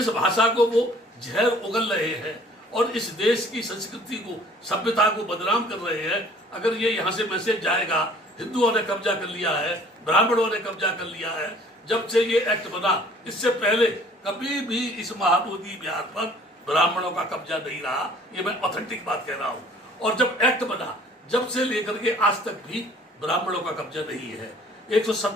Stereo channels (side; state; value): both; normal; correlation 0.54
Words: भाषा को वो जहर उगल रहे हैं और इस देश की संस्कृति को, सभ्यता को बदनाम कर रहे हैं, अगर ये यहाँ से मैसेज जाएगा हिंदुओं ने कब्जा कर लिया है, ब्राह्मणों ने कब्जा कर लिया है। जब से ये एक्ट बना, इससे पहले कभी भी इस महाबोधि विहार पर ब्राह्मणों का कब्जा नहीं रहा, ये मैं ऑथेंटिक बात कह रहा हूँ। और जब एक्ट बना, जब से लेकर के आज तक भी ब्राह्मणों का कब्जा नहीं है।